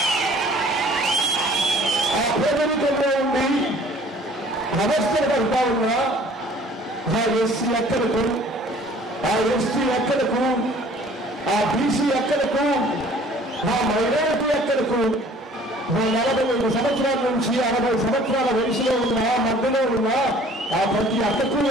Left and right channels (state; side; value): normal; both; correlation 0.53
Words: పేదరికంలో ఉండి అవస్థలు పడతా ఉన్నా ఆ ఎస్సీ అక్కలకు, ఆ ఎస్టీ అక్కలకు, ఆ బీసీ అక్కలకు, ఆ మైనారిటీ అక్కలకు 45 సంవత్సరాల నుంచి 60 సంవత్సరాల వయసులో ఉన్న మధ్యలో ఉన్న ఆ ప్రతి అక్కకు